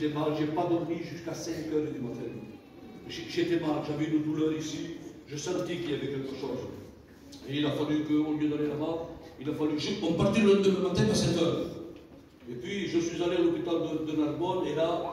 mal, j'ai pas dormi jusqu'à 5 h du matin. J'étais mal, j'avais une douleur ici, je sentais qu'il y avait quelque chose. Et il a fallu qu'au lieu d'aller là-bas, il a fallu. On partait le lendemain matin à 7 h. Et puis je suis allé à l'hôpital de Narbonne et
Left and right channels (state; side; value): identical; both; correlation 1.00